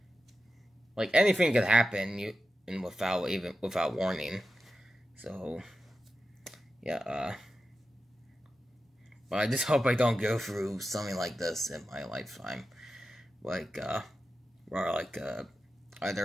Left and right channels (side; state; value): both; normal; correlation 0.91